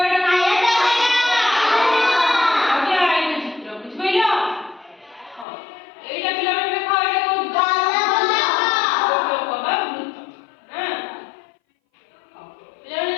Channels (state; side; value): drops out; right; at 5.5 s